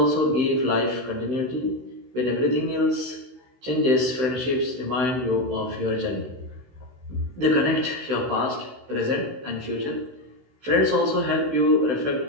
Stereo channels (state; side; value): late; left; 16 ms